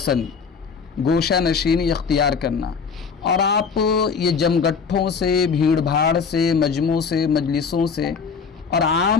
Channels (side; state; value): right; quieter; 5.7 dB